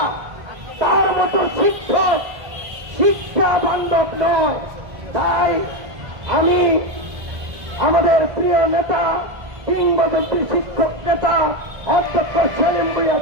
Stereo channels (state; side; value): late; left; 1.6 ms